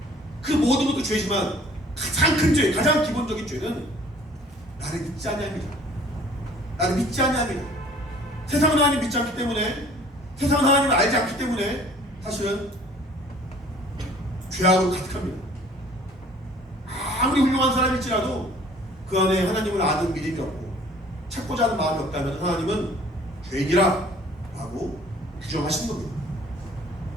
그 모든 것도 죄지만 가장 큰 죄, 가장 기본적인 죄는 나를 믿지 아니함이다. 나를 믿지 아니함이다. 세상은 하나님 믿지 않기 때문에, 세상은 하나님을 알지 않기 때문에 사실은 죄악으로 가득합니다. 아무리 훌륭한 사람일지라도 그 안에 하나님을 아는 믿음이 없고 찾고자 하는 마음이 없다면 하나님은 죄인이라 라고 규정하시는 겁니다.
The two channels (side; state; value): both; normal; correlation 0.53